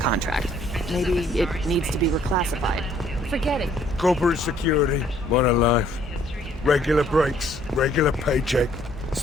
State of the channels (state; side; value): normal; both; correlation 0.62